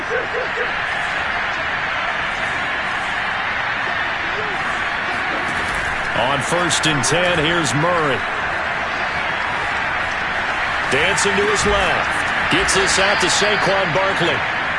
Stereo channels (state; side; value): identical; both; correlation 1.00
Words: On 1st and 10, here's Murray. Dancing to his left. Gets this out to Saquon Barkley.